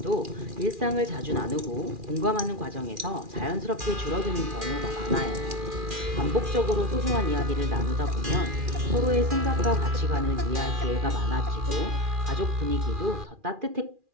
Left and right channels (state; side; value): late; left; 2.4 ms